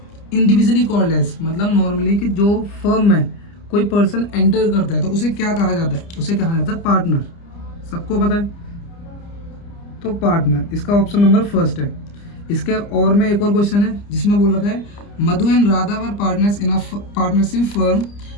individually called as. मतलब नॉर्मली कि जो फर्म में कोई पर्सन एंटर करता है तो उसे क्या कहा जाता है? उसे कहा जाता है पार्टनर। सबको पता है, तो पार्टनर इसका ऑप्शन नंबर फर्स्ट है। इसके और में एक और क्वेश्चन है जिसमें बोल रखा है Madhu and Radha were partners in a partnership firm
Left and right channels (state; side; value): late; right; 29 ms